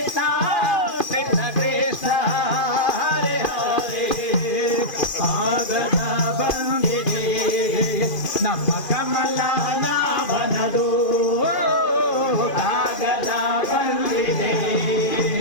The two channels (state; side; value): late; right; 2.4 ms